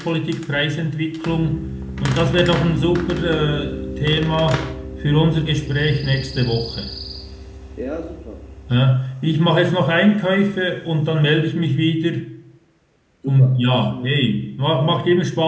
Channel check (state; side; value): identical; both; correlation 1.00